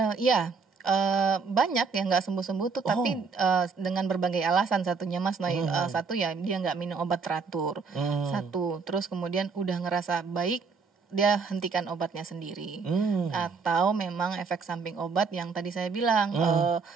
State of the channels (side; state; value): left; quieter; 4.9 dB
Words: Iya. Banyak yang nggak sembuh-sembuh tuh, tapi dengan berbagai alasan. Satunya Mas Noy, satu ya dia nggak minum obat teratur. Satu, terus kemudian udah ngerasa baik dia hentikan obatnya sendiri. Atau memang efek samping obat yang tadi saya bilang,